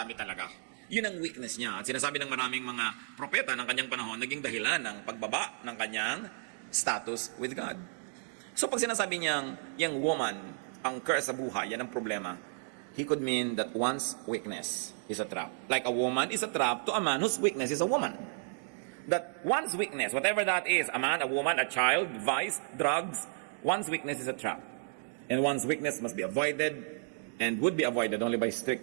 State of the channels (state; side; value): silent; left; digital silence